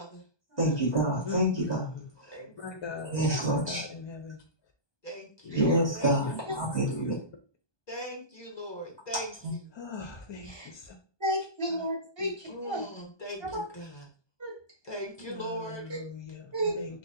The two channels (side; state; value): right; late; 1.2 ms